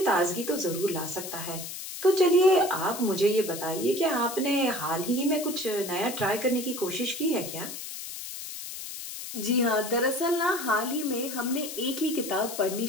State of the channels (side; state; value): left; noise; hiss, 9 dB below the sound